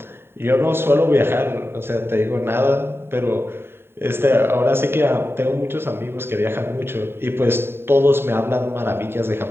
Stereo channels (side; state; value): left; late; 0.11 ms